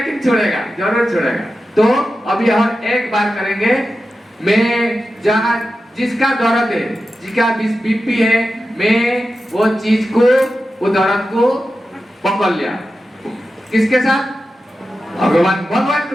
छोड़ेगा, जरूर छोड़ेगा। तो अभी हम एक बार करेंगे। मैं जहां जिसका दर्द है, जिसका बीपी है, मैं वो चीज को, वो दर्द को पकड़ लिया। किसके साथ? भगवान। भगवान को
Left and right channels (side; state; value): both; normal; correlation 0.92